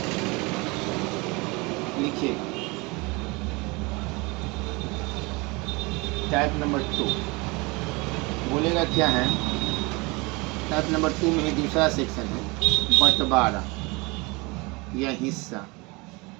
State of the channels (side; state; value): left; quieter; 26.0 dB